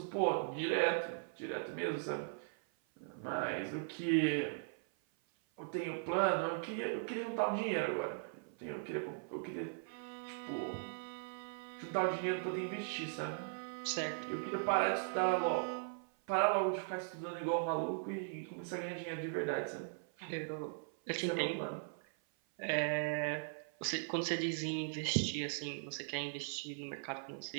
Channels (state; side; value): silent; left; 52 dB below the other